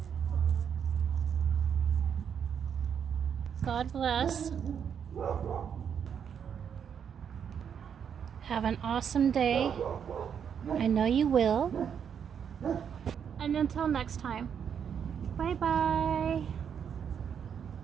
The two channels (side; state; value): left; quieter; 7.8 dB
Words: God bless. Have an awesome day. I know you will. And until next time, bye-bye.